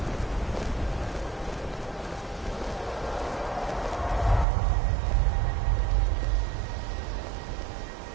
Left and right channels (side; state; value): left; drops out; at 4.5 s